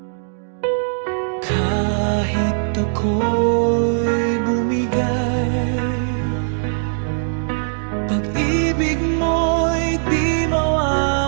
Kahit ako'y bumigay, pag-ibig mo'y di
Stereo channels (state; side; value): silent; left; digital silence